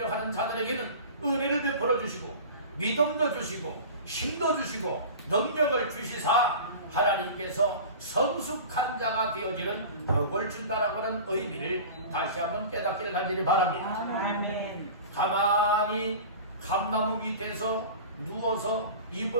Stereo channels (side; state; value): both; inverted; correlation -0.36